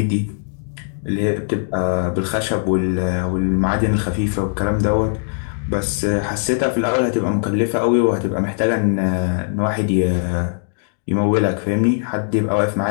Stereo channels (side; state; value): right; silent; digital silence